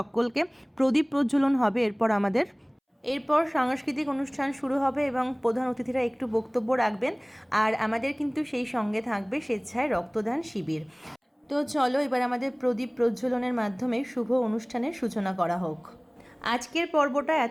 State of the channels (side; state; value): both; identical; correlation 1.00